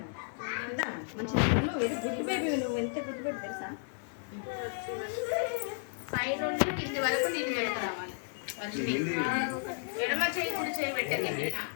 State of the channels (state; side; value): silent; right; digital silence